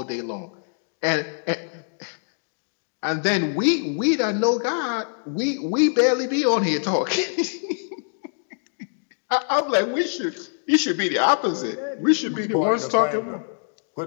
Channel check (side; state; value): right; silent; digital silence